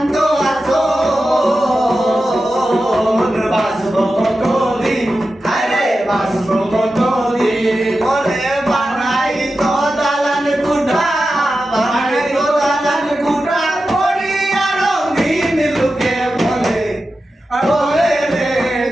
আসল বাঁচবো কতদিন, আরে বাঁচবো কতদিন। বলে বানাই তো দালান কুঠা, বানাই তো দালান কুঠা, করি আরো দিন। লোকে বলে বলে রে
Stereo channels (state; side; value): normal; both; correlation 0.92